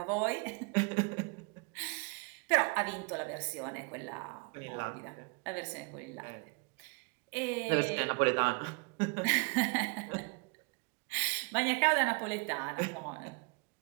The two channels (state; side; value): quieter; left; 30.9 dB